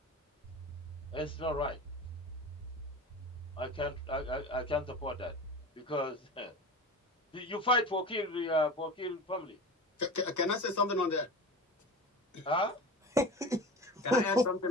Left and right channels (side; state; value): both; normal; correlation 0.32